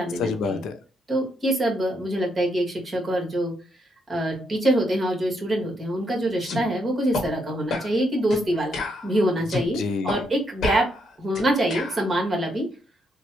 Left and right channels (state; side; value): normal; both; correlation 0.77